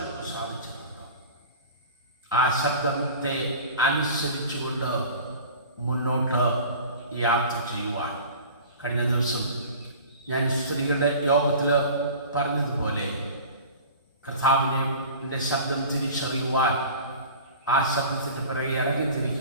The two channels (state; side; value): inverted; both; correlation -0.40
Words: നിനക്ക് സാധിച്ചിട്ടുണ്ടോ? ആ ശബ്ദത്തെ അനുസരിച്ചുകൊണ്ട് മുന്നോട്ട് യാത്ര ചെയ്യുവാൻ. കഴിഞ്ഞ ദിവസം ഞാൻ സ്ത്രീകളുടെ യോഗത്തിൽ പറഞ്ഞതുപോലെ കർത്താവിൻ്റെ ശബ്ദം തിരിച്ചറിയുവാൻ, ആ ശബ്ദത്തിൻ്റെ പിറകെ